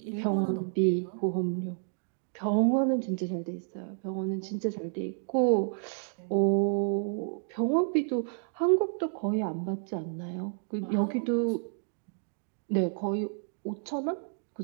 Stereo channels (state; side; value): silent; left; digital silence